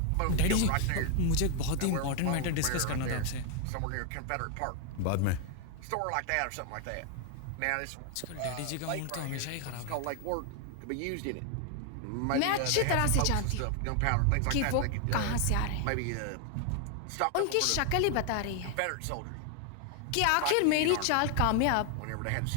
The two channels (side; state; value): both; different; correlation 0.00